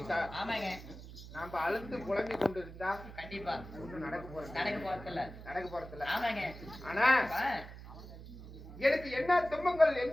நாம அழுந்து புலம்பி கொண்டு இருந்தா கண்டிப்பா ஒண்ணும் நடக்க போறதில்ல ஆமாங்க ஆனா எனக்கு என்ன துன்பங்கள்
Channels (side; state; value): right; noise; hum, 14 dB below the sound